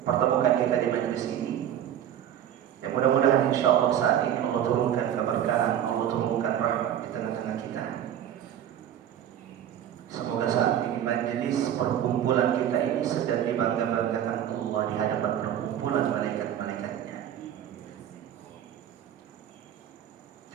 pertemukan kita di majelis ini. Ya, mudah-mudahan insyaallah saat ini Allah turunkan keberkahan, Allah turunkan rahmat di tengah-tengah kita. Semoga saat ini majelis perkumpulan kita ini sedang dibangga-banggakan Allah di hadapan perkumpulan malaikat-malaikatnya.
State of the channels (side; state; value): left; quieter; 10.4 dB